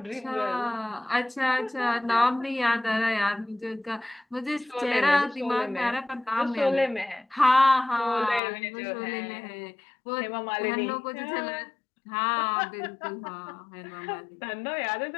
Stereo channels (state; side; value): drops out; right; at 8.4 s